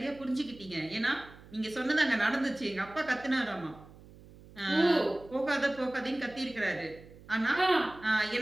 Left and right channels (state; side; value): noise; right; hum, 21 dB below the sound